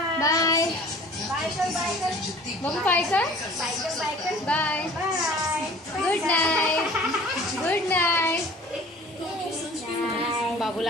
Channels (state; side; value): normal; both; correlation 0.47